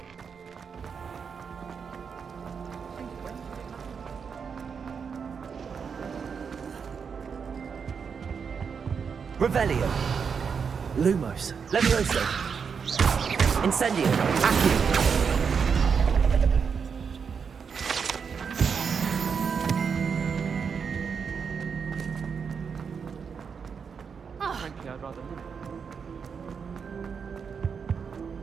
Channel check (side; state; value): left; quieter; 6.2 dB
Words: Revelio. Lumos. Levioso. Incendio. Accio. Frankly, I'd rather live.